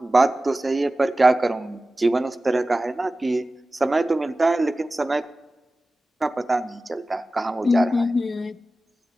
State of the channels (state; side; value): normal; both; correlation 0.96